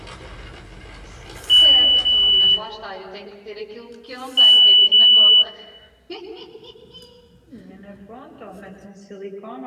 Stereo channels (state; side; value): identical; both; correlation 1.00